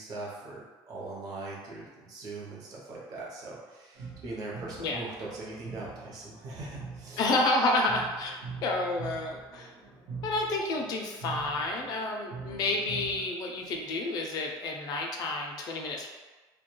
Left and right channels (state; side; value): normal; both; correlation 0.33